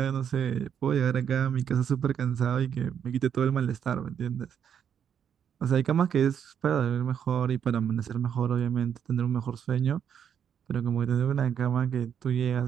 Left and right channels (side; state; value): left; quieter; 8.3 dB